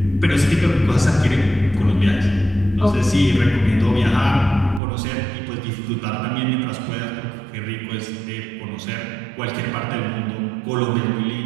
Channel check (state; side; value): drops out; left; at 4.8 s